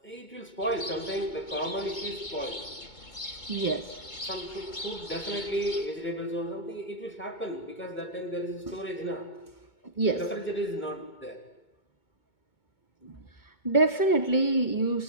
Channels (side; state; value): right; late; 2.2 ms